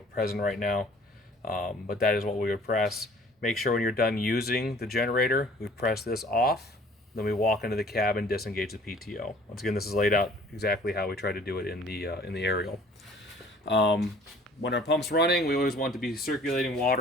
present right now, but that is what we would press. Make sure when you're done using the generator, we press this off, then we walk into the cab and disengage the PTO. Once again, this is laid out exactly how we try to do it in the aerial. When our pump's running, we always want to be circulating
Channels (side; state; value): both; normal; correlation 0.53